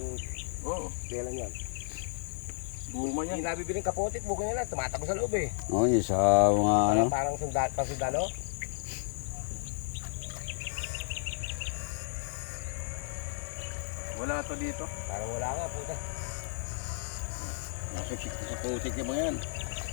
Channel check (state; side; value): silent; right; digital silence